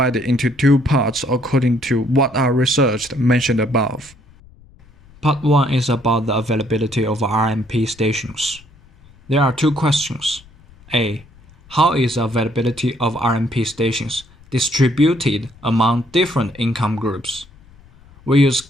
into 2 parts according to what are researched mentioned above. Part 1 is about the availability of RMP stations. There are 2 questions. A. How is the availability of RMP stations distributed among different income groups? We use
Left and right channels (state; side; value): noise; left; rumble, 26 dB below the sound